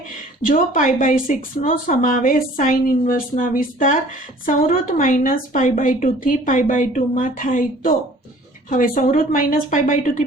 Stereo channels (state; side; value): normal; both; correlation 0.51